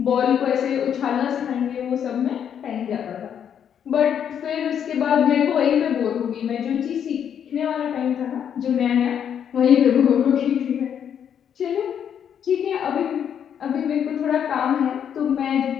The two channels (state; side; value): quieter; right; 8.6 dB